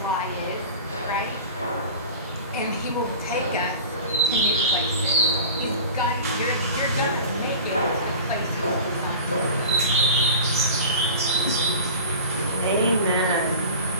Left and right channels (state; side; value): inverted; both; correlation -0.36